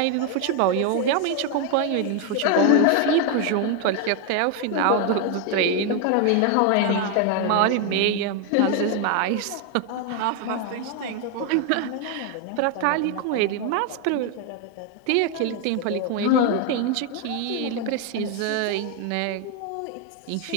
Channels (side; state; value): both; different; correlation 0.01